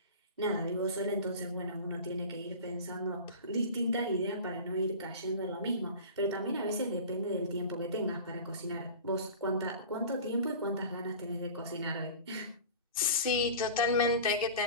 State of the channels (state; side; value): inverted; both; correlation -0.36